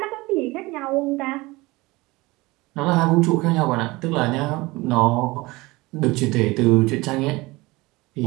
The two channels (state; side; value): quieter; left; 21.9 dB